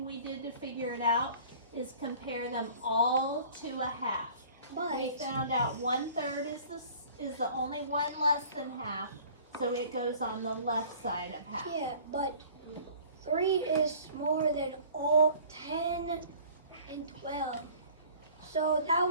we did to figure it out is compare them all to a half. But We found out 1/3 is the only one less than half, so it goes on the left side of half. yeah, but 3 is smaller than all 10 and 12. So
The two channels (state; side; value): inverted; both; correlation -0.48